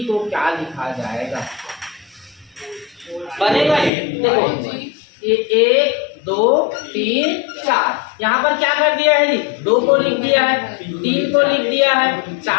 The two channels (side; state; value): right; drops out; at 3.9 s